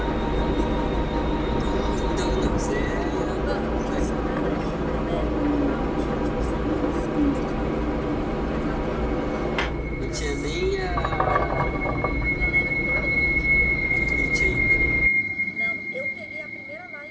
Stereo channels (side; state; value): both; identical; correlation 1.00